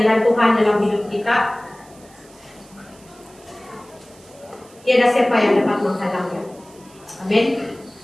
Tuhan dalam hidup kita, tiada siapa yang dapat menghalangnya. Amin.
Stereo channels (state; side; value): noise; right; hiss, 26 dB below the sound